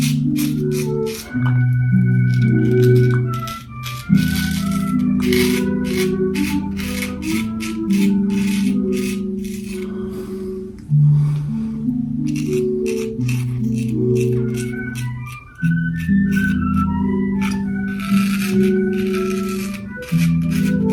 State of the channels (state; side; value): identical; both; correlation 1.00